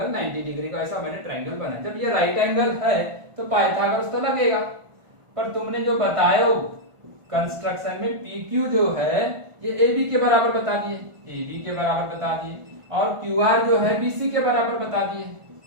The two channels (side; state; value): left; late; 1.5 ms